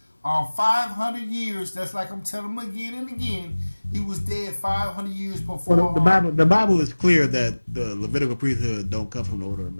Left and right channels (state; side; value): inverted; both; correlation -1.00